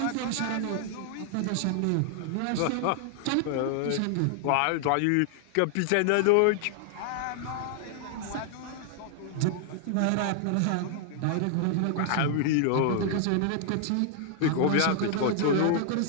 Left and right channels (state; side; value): different; both; correlation 0.00